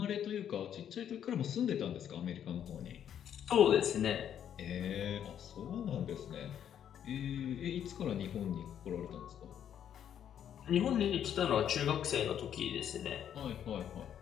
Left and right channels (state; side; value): quieter; right; 9.5 dB